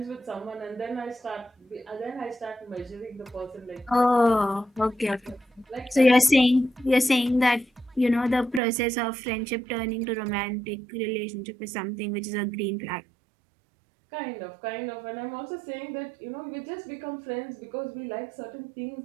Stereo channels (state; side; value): drops out; left; at 8.6 s